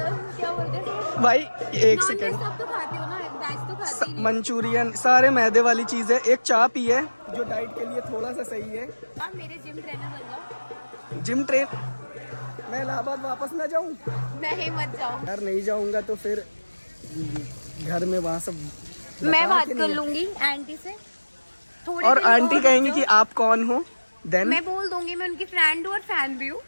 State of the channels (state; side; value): inverted; both; correlation -1.00